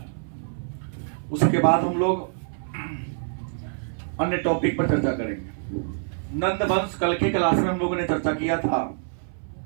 उसके बाद हम लोग अन्य टॉपिक पर चर्चा करेंगे। नंद वंश, कल के क्लास में हम लोगों ने चर्चा किया था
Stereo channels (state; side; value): silent; left; 59 dB below the other